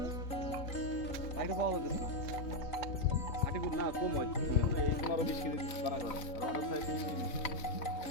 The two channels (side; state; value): right; late; 3.9 ms